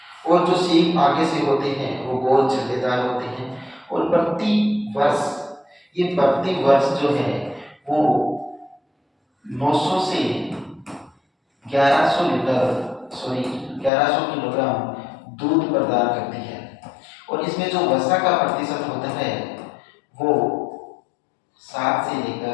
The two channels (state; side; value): drops out; right; at 13.9 s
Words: और जो सींग आगे से होते हैं वो गोल छल्लेदार होते हैं और प्रति वर्ष जो है वो 900 से 1100 किलोग्राम दूध प्रदान करती है और इसमें जो वसा का प्रतिशत होता है वो 7 से